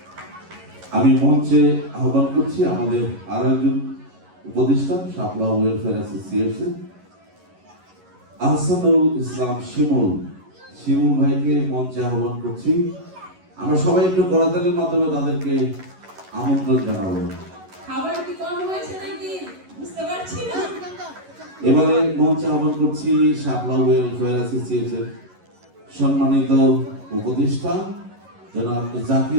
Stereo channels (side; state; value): left; late; 11 ms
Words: আমি মঞ্চে আহ্বান করছি আমাদের আরো একজন উপদেষ্টা, শাপলা ওয়েলফেয়ার অ্যাসোসিয়েশন আহসানুল ইসলাম শিমুল ভাইকে মঞ্চে আহ্বান করছি। আমরা সবাই একটু করতালির মাধ্যমে তাদেরকে আমন্ত্রণ জানাবো। খাবার কি কম হয়েছে নাকি বুঝতে পারছি না। এবারে মঞ্চে আহ্বান করছি শাপলা ওয়েলফেয়ার অ্যাসোসিয়েশন সম্মানিত উপদেষ্টা জনাব